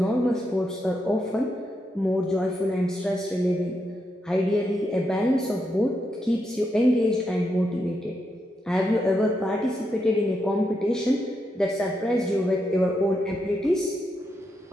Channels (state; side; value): normal; both; correlation 0.82